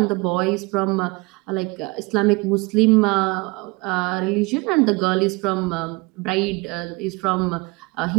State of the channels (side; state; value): left; quieter; 25.9 dB